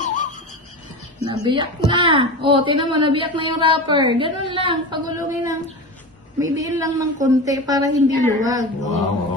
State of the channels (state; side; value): normal; both; correlation 0.27